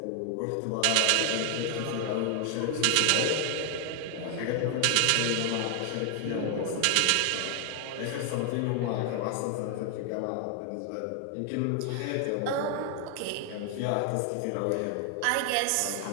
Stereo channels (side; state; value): both; different; correlation 0.00